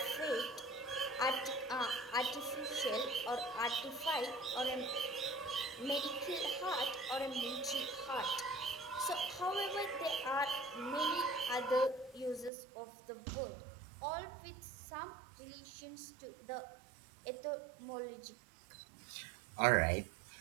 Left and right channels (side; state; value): left; drops out; at 12.5 s